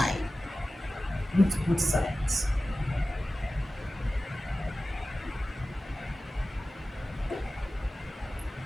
Root both sides.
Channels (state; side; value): normal; both; correlation 0.96